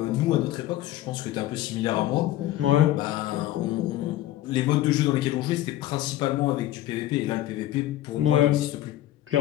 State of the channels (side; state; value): right; quieter; 14.3 dB